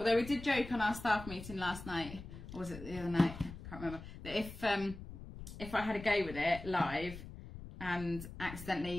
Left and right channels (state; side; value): noise; left; rumble, 12 dB below the sound